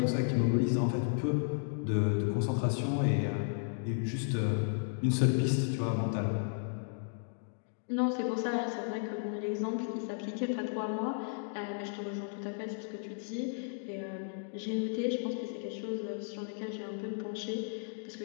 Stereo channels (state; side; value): silent; right; digital silence